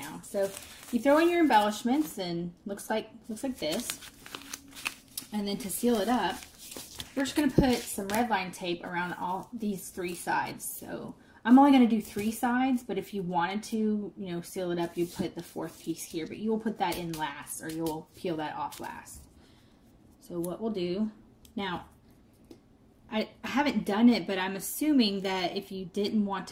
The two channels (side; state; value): both; identical; correlation 1.00